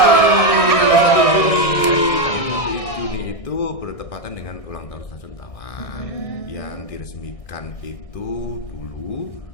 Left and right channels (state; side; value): late; right; 1.6 ms